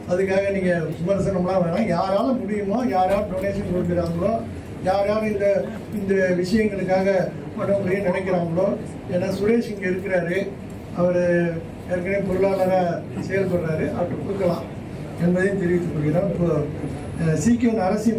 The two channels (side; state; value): both; identical; correlation 1.00